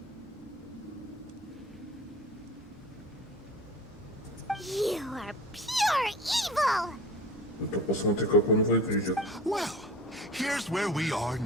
You are pure evil! Это посмотри, как он выглядит. Well, here's where we are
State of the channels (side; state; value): both; normal; correlation 0.38